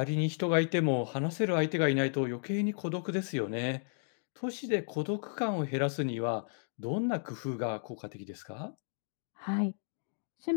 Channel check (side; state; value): right; silent; digital silence